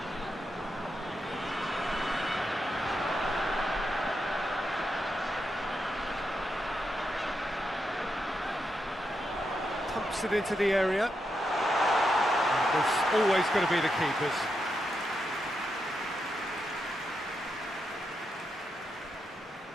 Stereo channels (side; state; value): both; normal; correlation 0.84